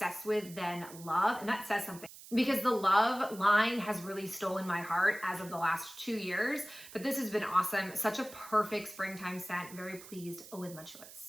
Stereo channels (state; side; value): noise; right; hiss, 17 dB below the sound